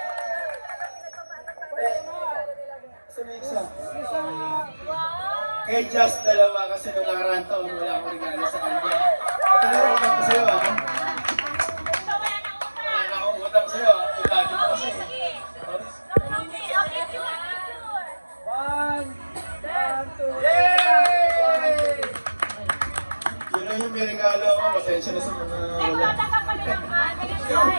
Isa. Kay Jess, dalawa kasi nung nakaraan taon wala akong regalo sa kanya. Ito na rin utang ko sa'yo ah. Wala na akong utang sa'yo ah. Itagi mo kasi. Yun lang yung may regalo ako. Pasensya na sa mga wala.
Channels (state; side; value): inverted; both; correlation -1.00